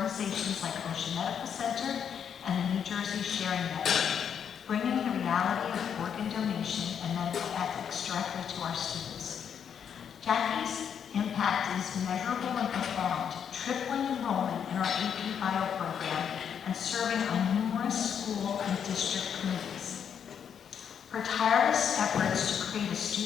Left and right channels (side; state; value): right; quieter; 8.0 dB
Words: like Ocean Medical Center and the New Jersey Sharing Network, bringing the reality of organ donation and medical ethics directly to our students. Jackie's impact is measurable and profound, tripling enrollment in our AP Bio program and serving on numerous school and district committees. Her tireless efforts to create a